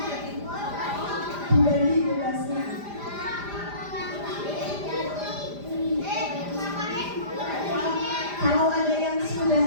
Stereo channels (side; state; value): left; late; 5.0 ms